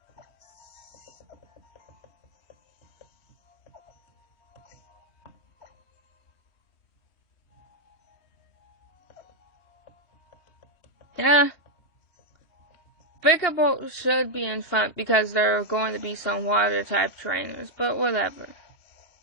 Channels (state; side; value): late; right; 3.1 ms